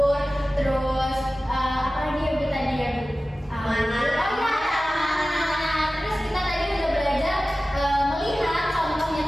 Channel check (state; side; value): normal; both; correlation 0.96